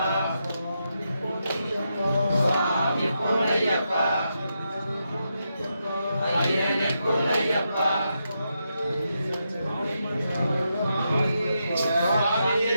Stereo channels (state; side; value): inverted; both; correlation -0.84